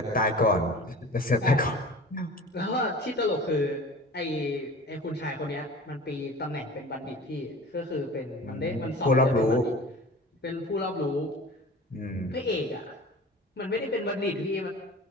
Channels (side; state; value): both; normal; correlation 0.39